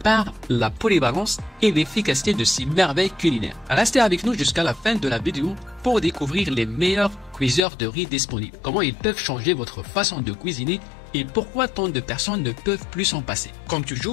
par la polyvalence et l'efficacité de ces merveilles culinaires. Restez avec nous jusqu'à la fin de la vidéo pour découvrir les meilleurs cuiseurs de riz disponibles, comment ils peuvent changer votre façon de cuisiner et pourquoi tant de personnes ne peuvent plus s'en passer. Comme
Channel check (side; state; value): right; drops out; at 7.6 s